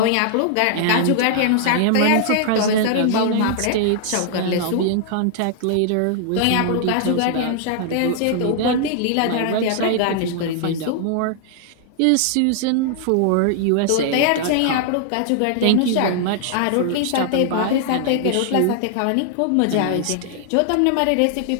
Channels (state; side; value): different; both; correlation -0.01